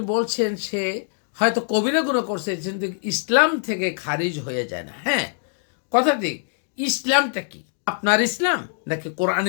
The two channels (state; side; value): silent; right; digital silence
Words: বলছেন সে হয়তো কবিরা গুনাহ করছে, কিন্তু ইসলাম থেকে খারিজ হয়ে যায় না। হ্যাঁ, কথা ঠিক। ইসলামটা কি? আপনার ইসলাম নাকি